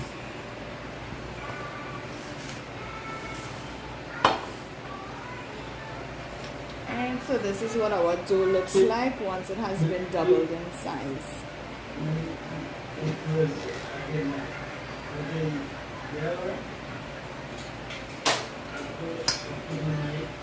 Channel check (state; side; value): identical; both; correlation 1.00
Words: And so this is what our dough looks like once it has been doubled in size.